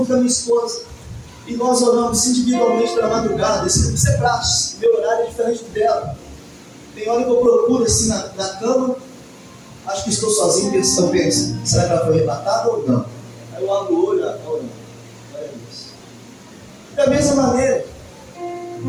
com a minha esposa. E nós oramos individualmente pela madrugada. Isso é prático. Meu horário é diferente do dela. Tem hora que eu procuro assim na cama. Acho que estou sozinho, eu penso, será que ela foi arrebatada ou não? Aí eu abro o olho, orando. Olha isso. Da mesma maneira,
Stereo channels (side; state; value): both; identical; correlation 1.00